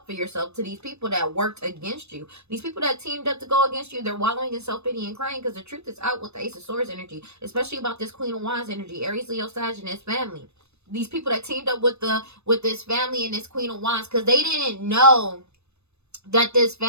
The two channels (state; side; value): late; left; 0.81 ms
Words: for yourself to these people that worked against you. These people that teamed up to go against you, they're wallowing in self-pity and crying because the truth is out with the Ace of Swords energy, especially about this Queen of Wands energy, Aries, Leo, Sag, and his family. These people that teamed up with this family and this Queen of Wands, because they didn't know that this